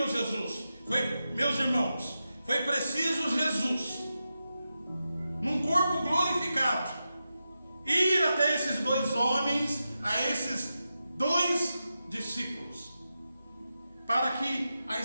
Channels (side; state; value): both; inverted; correlation -0.90